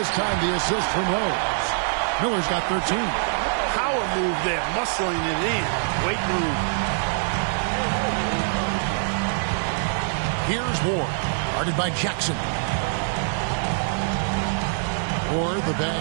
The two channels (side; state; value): left; silent; digital silence